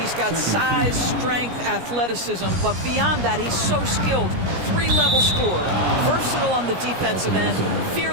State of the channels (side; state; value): left; late; 17 ms